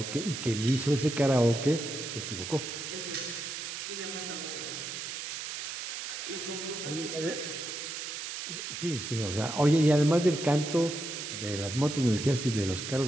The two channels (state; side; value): noise; right; hiss, 6 dB below the sound